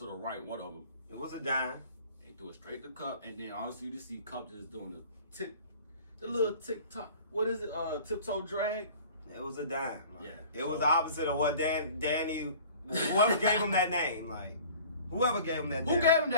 the right, one of them. It was a dime. He threw it straight to Cup, and then honestly, you just see Cup just doing the little tick-tock. What is it? Tiptoe drag? It was a dime. Like, yeah. It was the opposite of what Danny, whoever gave him that name, like, whoever gave him that name. Who gave him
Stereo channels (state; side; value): inverted; both; correlation -0.47